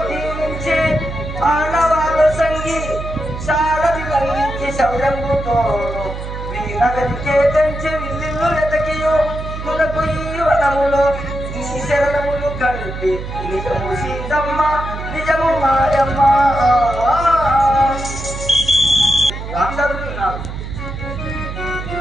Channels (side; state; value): right; noise; hum, 8 dB below the sound